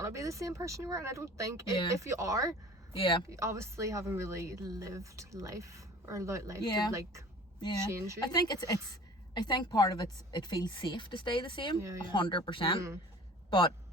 to be the same person you were, and I don't think if you are, you obviously haven't really lived life or allowed life to like change you. I think I think part of it feels safe to stay the same, 100%. But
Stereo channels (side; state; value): both; normal; correlation 0.45